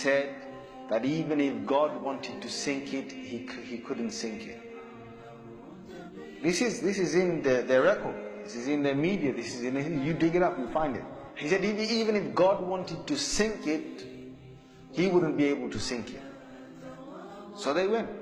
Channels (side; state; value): both; identical; correlation 1.00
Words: that even if God wanted to sink it, he couldn't sink it. This is in their record. This is in the media. This is you dig it up, you find it. He said even if God wanted to sink it, he wouldn't be able to sink it. So they went.